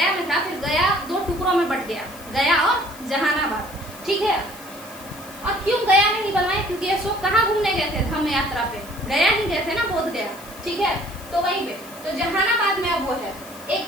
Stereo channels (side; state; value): left; noise; hiss, 19 dB below the sound